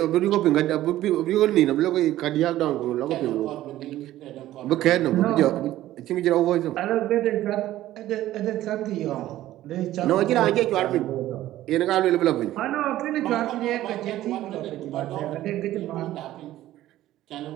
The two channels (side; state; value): left; quieter; 14.4 dB